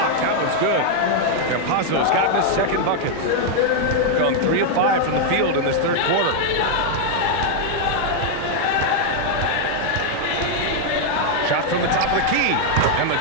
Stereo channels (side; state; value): both; different; correlation 0.00